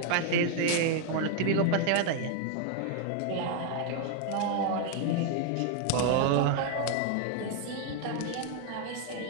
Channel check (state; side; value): different; both; correlation 0.00